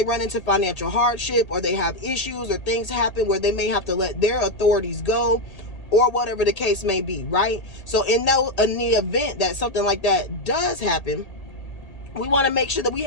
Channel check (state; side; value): late; right; 1.8 ms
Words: run into financial hardship, or they have issues, or things happen where they may have to let their authorities go, or whatever the case may be, right? So in the event that something like that does happen, we want to make sure that we